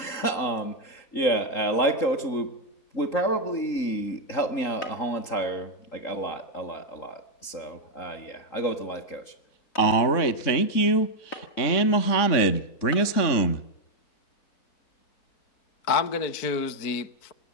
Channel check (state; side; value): late; right; 3.6 ms